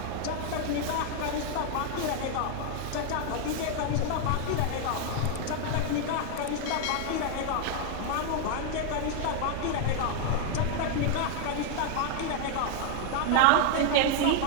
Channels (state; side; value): different; both; correlation 0.00